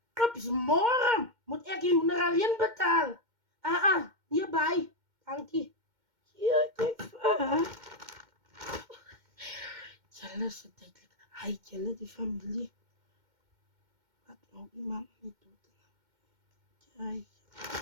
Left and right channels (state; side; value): late; left; 2.1 ms